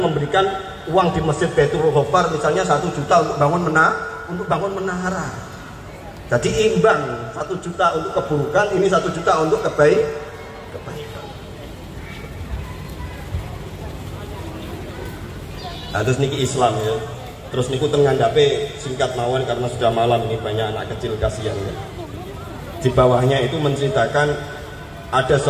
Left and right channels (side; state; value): both; identical; correlation 1.00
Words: uang di masjid Baitul Ghafar misalnya 1 juta untuk bangun menara. Jadi imbang, 1 juta untuk keburukan, ini 1 juta untuk kebaikan. Nah, terus niki Islam ya. Terus niku ngandhape singkat mawon karena sudah malam ini banyak anak kecil kasihan ya. Di bawahnya itu menceritakan ada